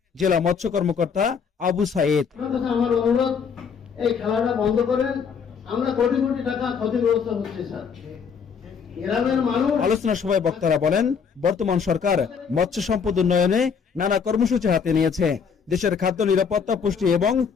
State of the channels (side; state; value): right; quieter; 6.3 dB